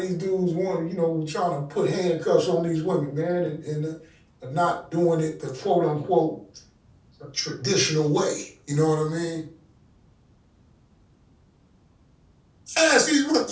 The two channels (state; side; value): identical; both; correlation 1.00